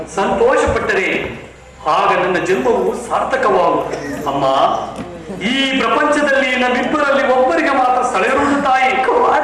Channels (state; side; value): identical; both; correlation 1.00